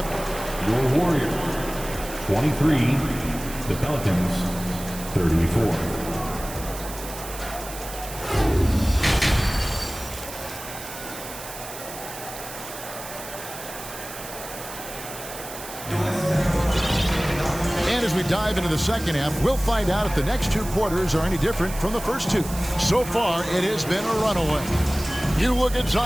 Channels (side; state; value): right; noise; hiss, 12 dB below the sound